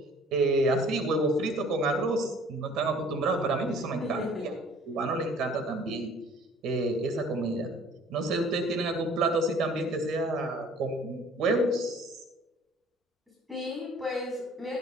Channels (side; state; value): both; normal; correlation 0.53